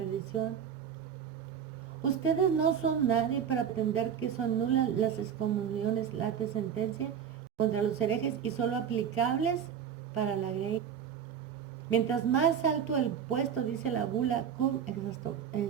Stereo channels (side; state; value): left; quieter; 8.1 dB